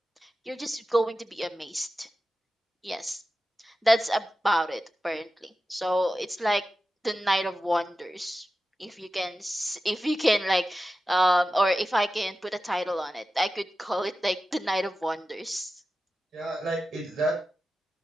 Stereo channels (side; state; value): both; normal; correlation 0.93